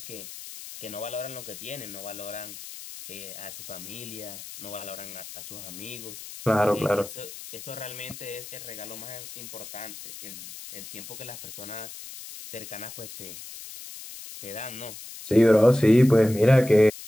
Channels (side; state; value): left; noise; hiss, 13 dB below the sound